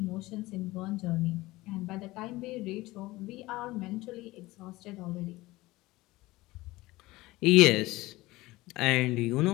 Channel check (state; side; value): quieter; right; 19.5 dB